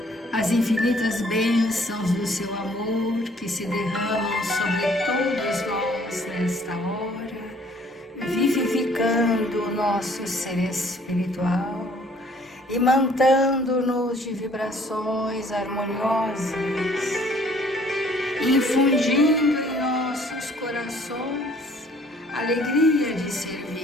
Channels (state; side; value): normal; both; correlation 0.59